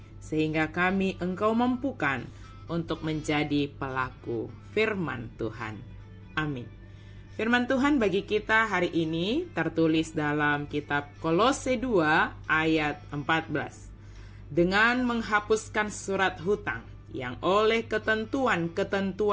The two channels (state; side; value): identical; both; correlation 1.00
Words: sehingga kami Engkau mampukan untuk menjadi pelaku firman Tuhan. Amin. Firman Tuhan bagi kita hari ini tertulis dalam kitab Kolose 2 ayat 14. Dengan menghapuskan surat hutang yang oleh